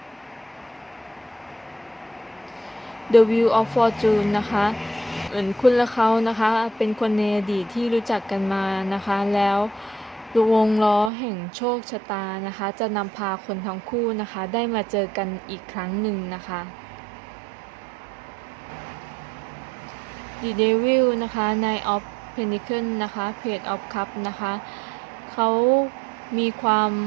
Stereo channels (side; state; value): left; drops out; at 11.1 s